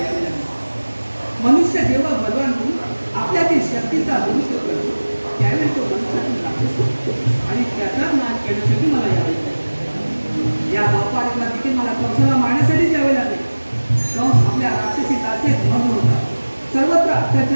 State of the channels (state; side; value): inverted; both; correlation -1.00